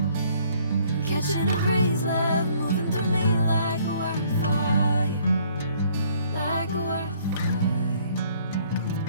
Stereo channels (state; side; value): inverted; both; correlation -0.61